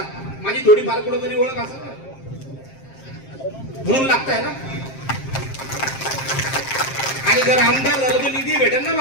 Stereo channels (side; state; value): right; late; 7.5 ms